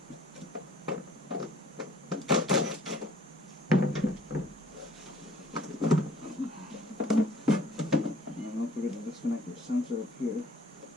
And don't forget to disconnect your sensor up here.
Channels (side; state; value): both; normal; correlation 0.55